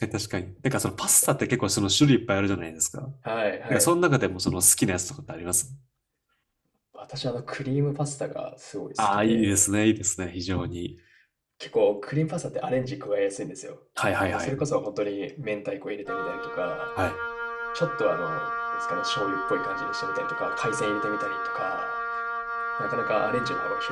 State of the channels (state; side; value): identical; both; correlation 1.00